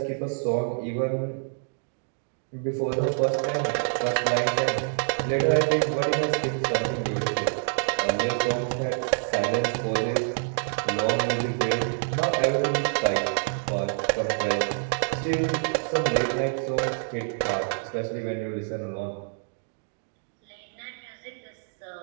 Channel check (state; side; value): silent; left; digital silence